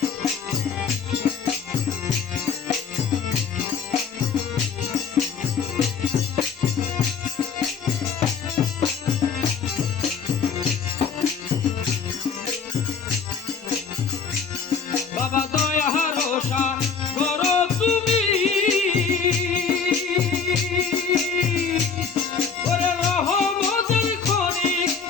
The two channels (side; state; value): right; quieter; 6.0 dB